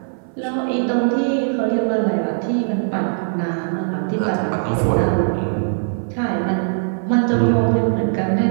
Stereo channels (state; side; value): silent; left; 61 dB below the other